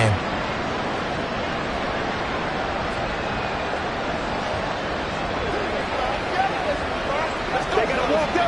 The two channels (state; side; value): noise; right; hum, 19 dB below the sound